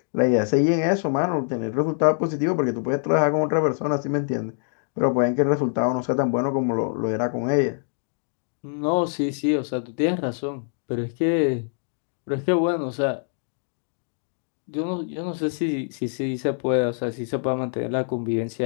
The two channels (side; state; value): right; silent; digital silence